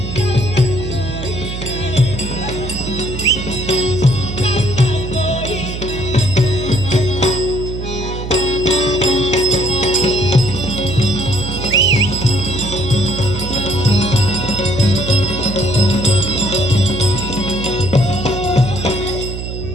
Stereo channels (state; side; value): noise; right; hum, 6 dB below the sound